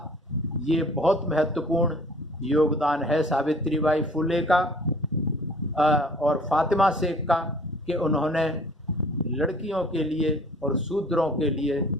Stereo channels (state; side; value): normal; both; correlation 0.52